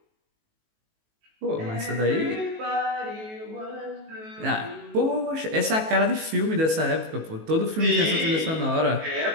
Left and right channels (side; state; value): left; late; 19 ms